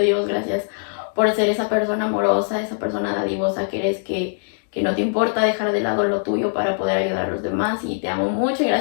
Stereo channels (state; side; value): silent; right; digital silence